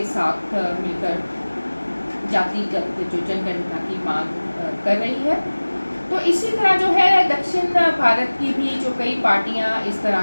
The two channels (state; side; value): inverted; both; correlation -1.00